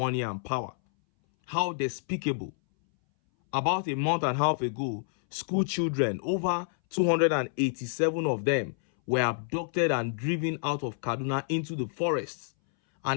and power. How despicable. About a month and a half ago, school children, over 287 of them, were abducted and driven out of Kaduna into the forests.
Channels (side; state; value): right; silent; 59 dB below the other